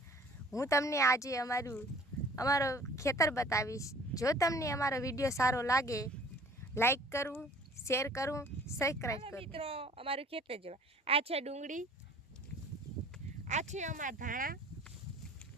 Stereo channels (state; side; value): normal; both; correlation 0.51